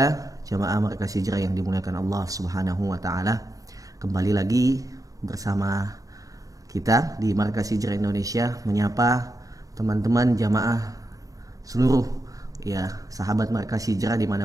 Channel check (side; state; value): left; late; 0.17 ms